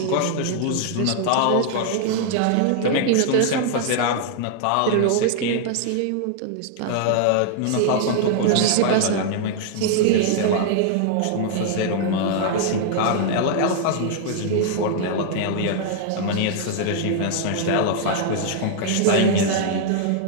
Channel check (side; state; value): both; different; correlation 0.00